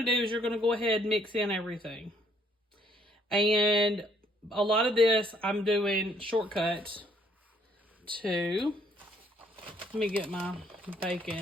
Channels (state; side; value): normal; both; correlation 0.65